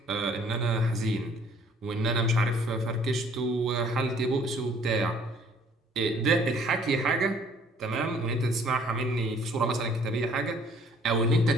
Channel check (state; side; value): normal; both; correlation 0.58